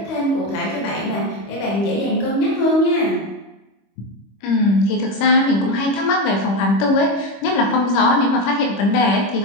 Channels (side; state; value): right; late; 25 ms